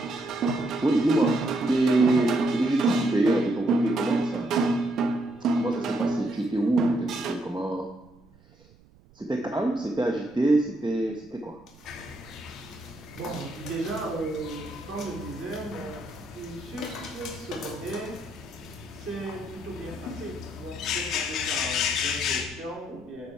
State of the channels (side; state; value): right; noise; rumble, 27 dB below the sound